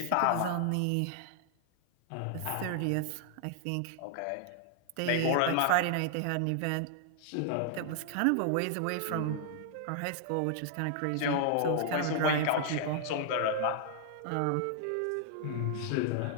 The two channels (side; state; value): both; different; correlation -0.01